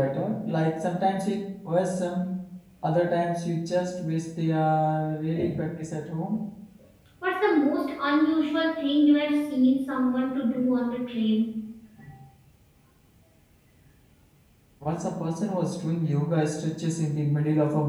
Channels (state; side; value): identical; both; correlation 1.00